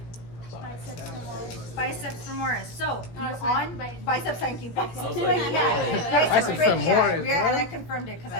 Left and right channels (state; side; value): late; right; 17 ms